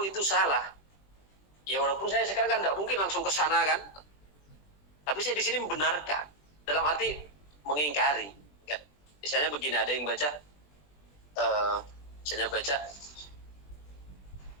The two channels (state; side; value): late; right; 20 ms